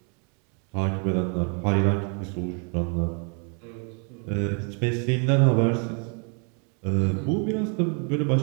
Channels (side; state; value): left; quieter; 39.1 dB